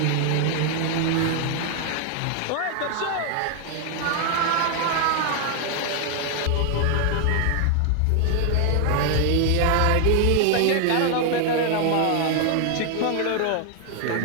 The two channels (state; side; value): different; both; correlation 0.00